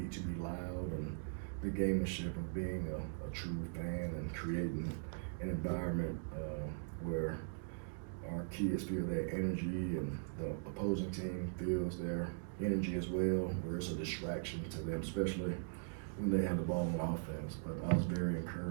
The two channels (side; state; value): left; silent; digital silence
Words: need to be loud, and the gamemanship of being a true fan and creating an environment where our kids feel their energy and the opposing team feels their energy as well, where it's a distraction to them, especially when they have the ball on offense. But I was very